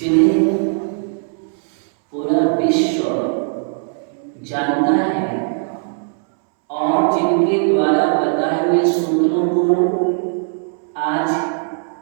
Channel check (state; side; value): silent; left; 67 dB below the other